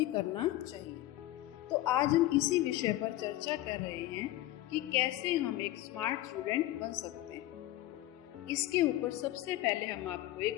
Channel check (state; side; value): quieter; right; 15.8 dB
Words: करना चाहिए। तो आज हम इसी विषय पर चर्चा कर रहे हैं कि कैसे हम एक स्मार्ट स्टूडेंट बन सकते हैं। इसके ऊपर सबसे पहले हम आपको